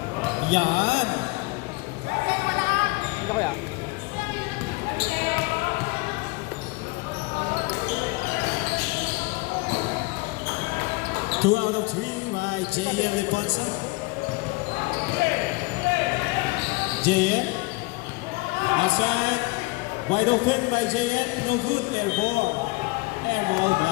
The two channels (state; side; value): quieter; right; 24.9 dB